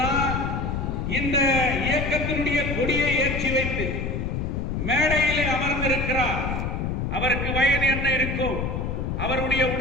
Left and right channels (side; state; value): left; noise; rumble, 2 dB below the sound